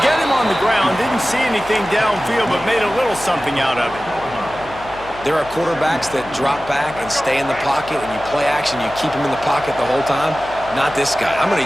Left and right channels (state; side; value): noise; left; hum, 19 dB below the sound